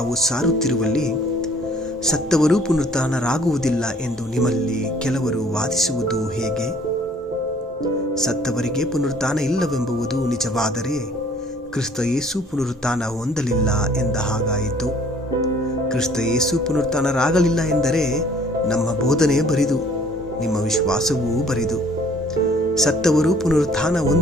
ಸಾರುತ್ತಿರುವಲ್ಲಿ ಸತ್ತವರು ಪುನರುತ್ಥಾನರಾಗುವುದಿಲ್ಲ ಎಂದು ನಿಮ್ಮಲ್ಲಿ ಕೆಲವರು ವಾದಿಸುವುದು ಹೇಗೆ? ಸತ್ತವರಿಗೆ ಪುನರುತ್ಥಾನ ಇಲ್ಲವೆಂಬುದು ನಿಜವಾದರೆ ಕ್ರಿಸ್ತ ಯೇಸು ಪುನರುತ್ಥಾನ ಹೊಂದಲಿಲ್ಲ ಎಂದ ಹಾಗಾಯಿತು. ಕ್ರಿಸ್ತ ಯೇಸು ಪುನರುತ್ಥಾನರಾಗಲಿಲ್ಲ ಎಂದರೆ ನಮ್ಮ ಬೋಧನೆ ಬರಿದು, ನಿಮ್ಮ ವಿಶ್ವಾಸವೂ ಬರಿದು. ಸತ್ತವರು ಪುನರುತ್ಥಾನ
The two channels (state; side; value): normal; both; correlation 0.57